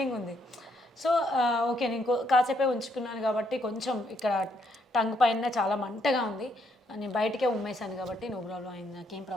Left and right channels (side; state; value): both; normal; correlation 0.73